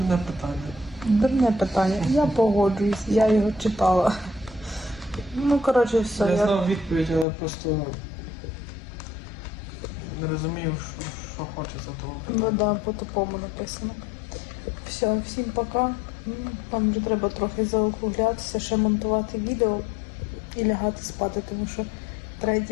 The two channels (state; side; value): drops out; right; at 7.2 s